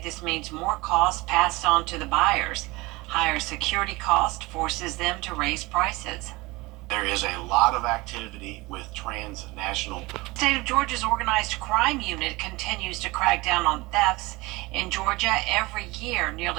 this means more costs passed on to the buyers. Higher security cost forces them to raise prices. There is a lot of activity with transnational. The state of Georgia's organized crime unit continues to crack down on thefts. In Georgia, every year,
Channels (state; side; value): quieter; left; 22.5 dB